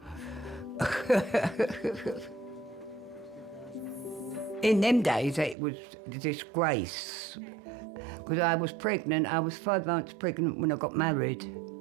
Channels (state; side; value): drops out; left; at 5.6 s